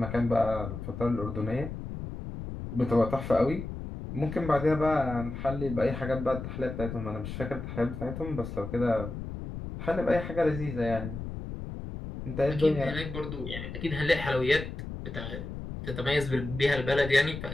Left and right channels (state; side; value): noise; left; rumble, 8 dB below the sound